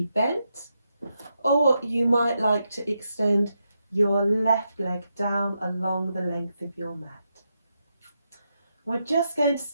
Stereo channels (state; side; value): inverted; both; correlation -0.84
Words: bent, or you might like to extend your left leg down along the length of your mat. We're just going to